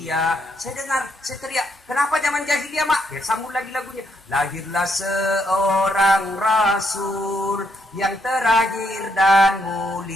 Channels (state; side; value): normal; both; correlation 0.75